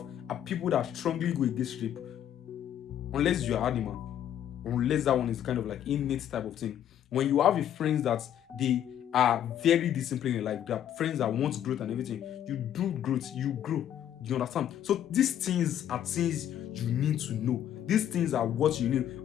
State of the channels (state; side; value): quieter; right; 10.5 dB